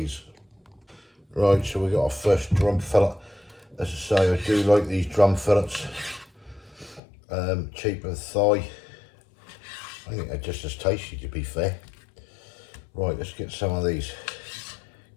Right, so we got our first drum fillet. As I say, I do like these drum fillets. Cheaper than thigh. I think they're just as tasty, to be fair. Right, let's get some of these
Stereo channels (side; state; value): right; drops out; at 7.0 s